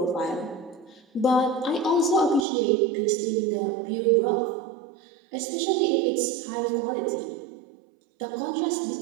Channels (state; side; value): drops out; left; at 2.5 s